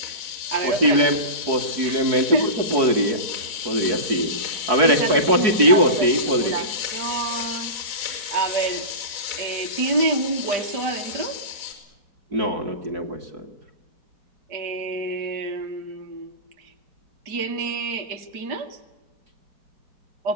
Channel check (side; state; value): left; late; 4.6 ms